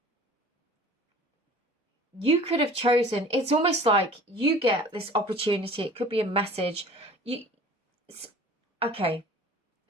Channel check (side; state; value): both; normal; correlation 0.45